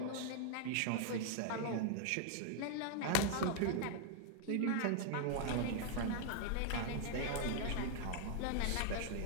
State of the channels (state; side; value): different; both; correlation 0.00